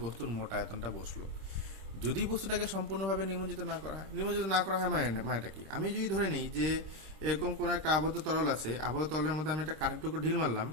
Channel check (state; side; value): late; left; 26 ms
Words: বস্তুর মোট আয়তনটা বসলো। যদি বস্তুটাকে সম্পূর্ণভাবে নিমজ্জিত না করা হয় মানেটা কি? আমি যদি ধরে নিই যে এরকম কোনো একটা আবদ্ধ তরল আছে, আবদ্ধ তরলের মধ্যে আমি একটা কাঠের টুকরো ঢিল মারলাম,